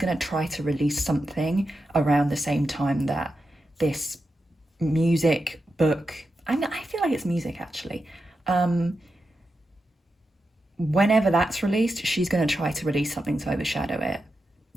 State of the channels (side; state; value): both; normal; correlation 0.89